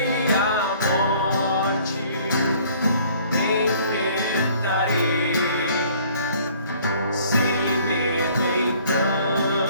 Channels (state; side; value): inverted; both; correlation -0.56